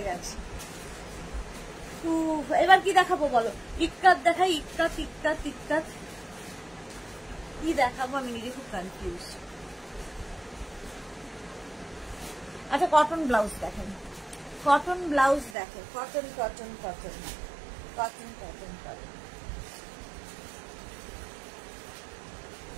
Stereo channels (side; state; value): left; drops out; at 15.6 s